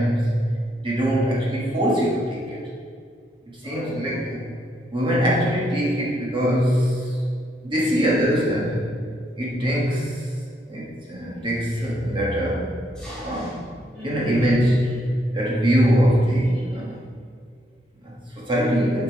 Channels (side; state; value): both; normal; correlation 0.74